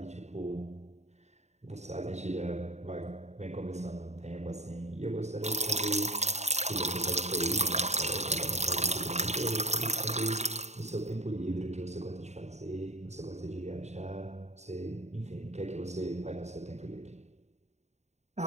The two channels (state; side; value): late; left; 0.32 ms